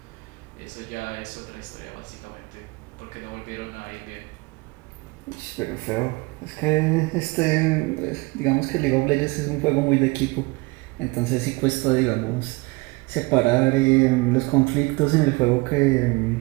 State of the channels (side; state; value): left; quieter; 25.2 dB